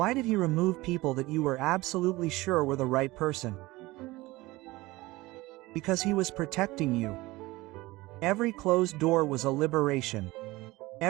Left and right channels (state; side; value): quieter; left; 20.0 dB